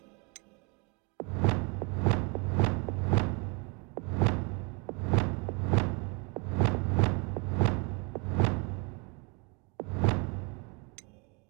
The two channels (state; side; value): quieter; left; 32.4 dB